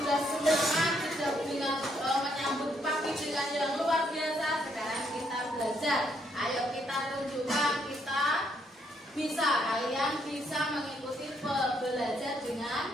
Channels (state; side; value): normal; both; correlation 0.73